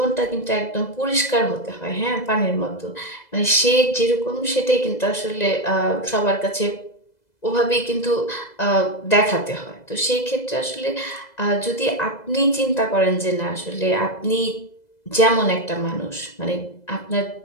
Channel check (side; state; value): right; late; 2.0 ms